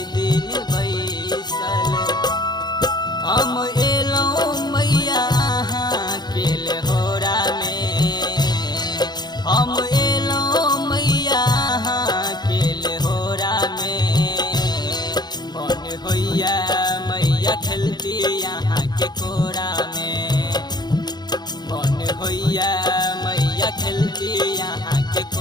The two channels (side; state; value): right; late; 0.20 ms